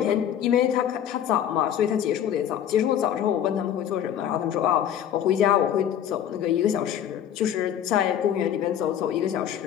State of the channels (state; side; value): quieter; right; 9.9 dB